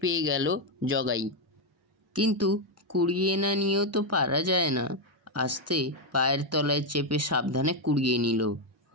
পেয়ে গেল জগাই। কিন্তু কুড়িয়ে না নিয়েও তো পারা যায় না। আস্তে পায়ের তলায় চেপে সাবধানে কুড়িয়ে নিল।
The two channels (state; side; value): normal; both; correlation 0.04